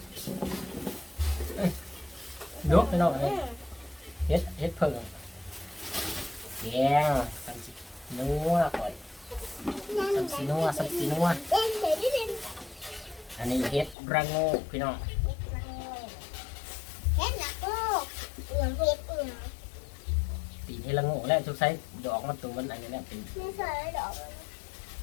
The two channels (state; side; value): drops out; right; at 14.0 s